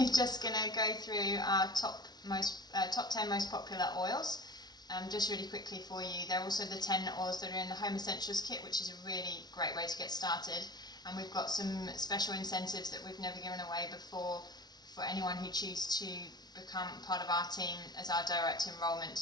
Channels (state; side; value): late; right; 0.19 ms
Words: just going to go through our top 10 most popular oils, just really quickly for you. They're also the 10 oils that are in the Home Essentials kit, which is a really great way to get started, and we've got some special incentives that we've never given away before for anyone who chooses to become part of our team as our direct